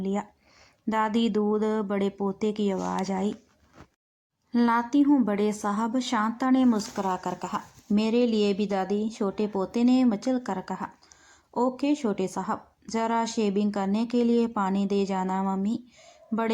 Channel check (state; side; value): identical; both; correlation 1.00